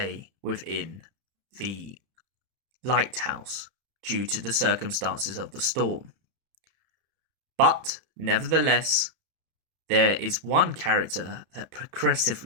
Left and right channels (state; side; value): late; left; 31 ms